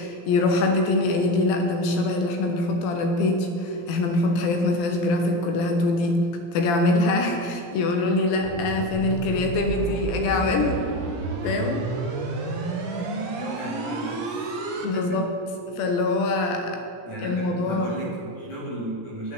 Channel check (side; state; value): right; late; 17 ms